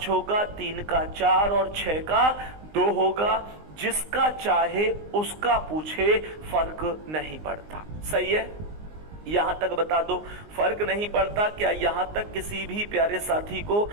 होगा, 3 का 4 और 6 का 2 होगा। जिसका चाहे उसका पूछे, फर्क नहीं पड़ता। सही है? यहां तक बता दो, फर्क नहीं पड़ता। क्या यहां तक किसी भी प्यारे साथी को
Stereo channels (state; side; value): late; left; 19 ms